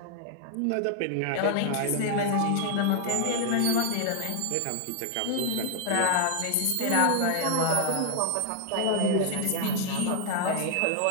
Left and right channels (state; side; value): different; both; correlation 0.00